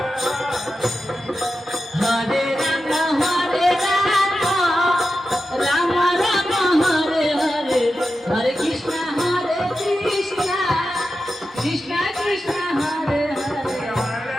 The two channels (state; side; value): normal; both; correlation 0.91